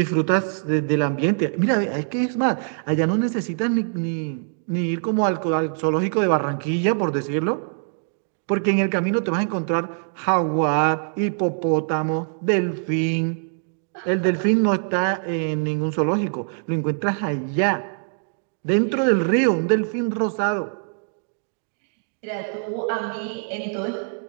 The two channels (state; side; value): silent; left; digital silence